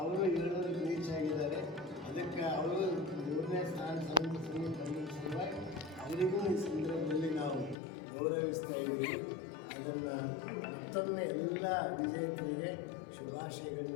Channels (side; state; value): right; drops out; at 7.8 s